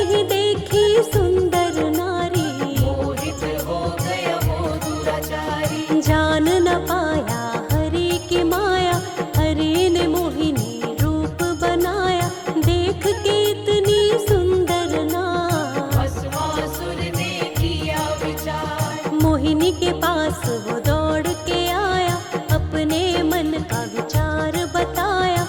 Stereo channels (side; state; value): both; identical; correlation 1.00